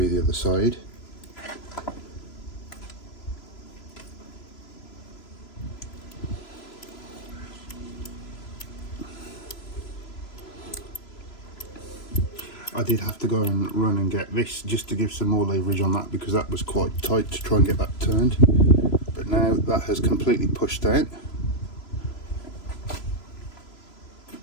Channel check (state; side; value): late; right; 3.0 ms